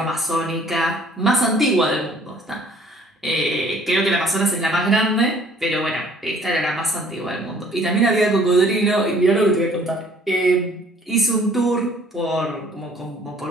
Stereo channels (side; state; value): both; normal; correlation 0.57